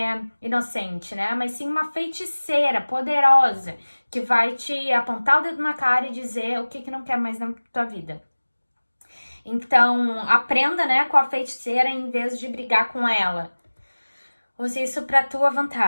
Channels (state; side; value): inverted; both; correlation -1.00